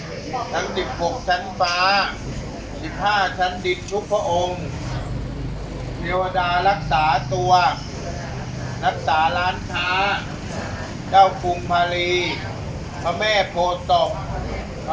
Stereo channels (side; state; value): both; identical; correlation 1.00